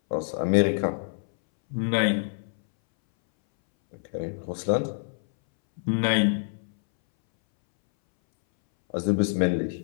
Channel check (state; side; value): silent; right; 61 dB below the other